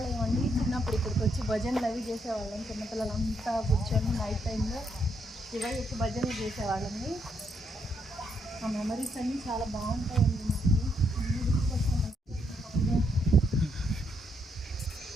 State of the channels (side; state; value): both; normal; correlation 0.76